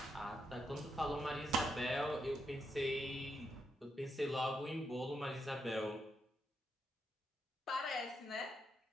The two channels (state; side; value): normal; both; correlation 0.81